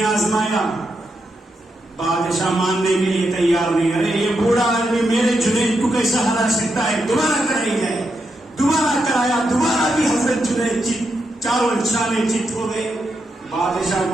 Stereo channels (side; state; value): both; normal; correlation 0.84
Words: آزمایا، بادشاہ ماننے کے لیے تیار نہیں. ارے یہ بوڑھا آدمی میرے جنید کو کیسا ہرا سکتا ہے، دوبارہ کرائی جائے. دوبارہ کرایا، دوبارہ بھی حضرت جنید چاروں شانے چت ہو گئے. بادشاہ